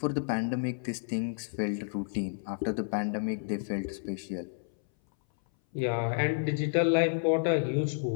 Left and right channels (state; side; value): silent; right; 57 dB below the other